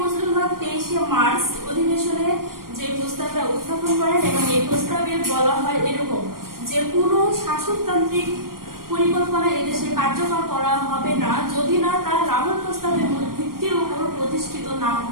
হক 23শে মার্চ অধিবেশনে যে প্রস্তাবটা উত্থাপন করেন এবং এই প্রস্তাবে বলা হয় এরকম যে কোনো শাসনতান্ত্রিক পরিকল্পনা এদেশে কার্যকর করা হবে না যদি না তার লাহোর প্রস্তাবের মূল ভিত্তির উপর প্রতিষ্ঠিত না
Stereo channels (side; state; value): left; late; 0.92 ms